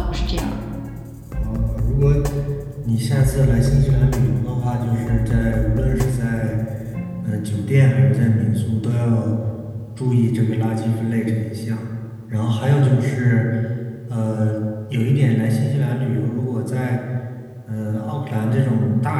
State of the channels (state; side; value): identical; both; correlation 1.00